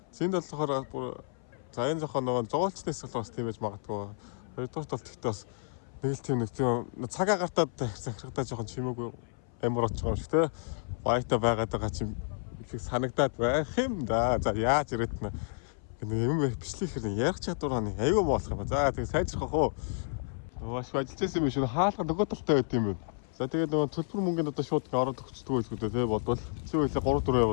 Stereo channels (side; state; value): right; silent; 57 dB below the other